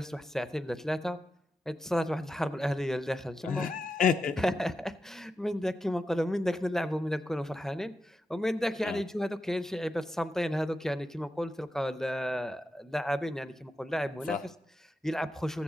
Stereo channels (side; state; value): both; normal; correlation 0.88